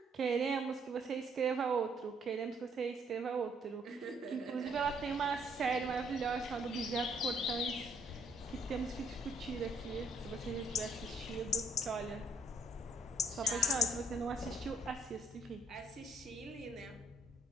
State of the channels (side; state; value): both; normal; correlation 0.65